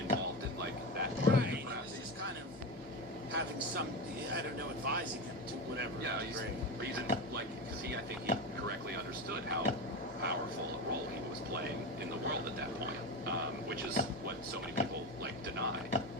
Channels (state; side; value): normal; both; correlation 0.20